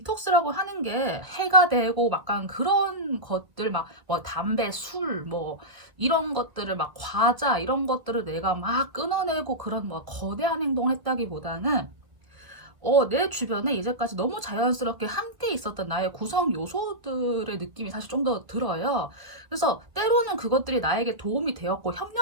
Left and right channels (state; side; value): late; left; 1.8 ms